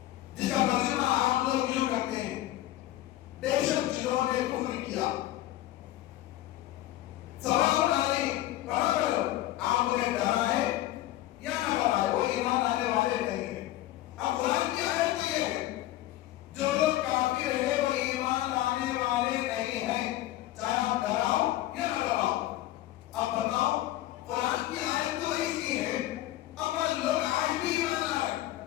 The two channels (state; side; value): quieter; right; 15.0 dB